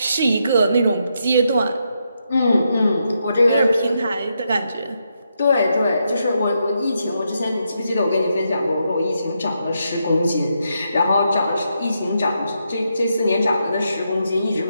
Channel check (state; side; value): inverted; both; correlation -0.81